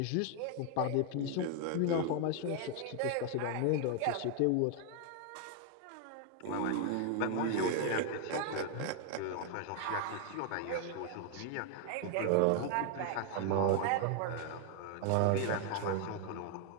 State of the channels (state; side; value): different; both; correlation 0.00